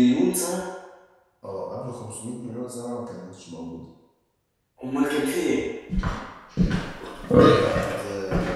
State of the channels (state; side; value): identical; both; correlation 1.00